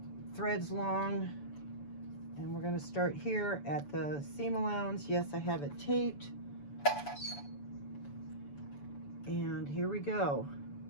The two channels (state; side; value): late; right; 7.0 ms